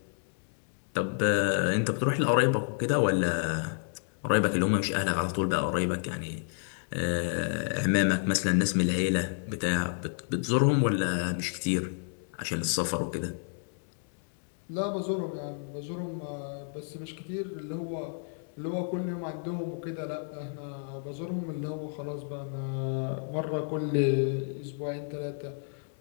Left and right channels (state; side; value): silent; right; digital silence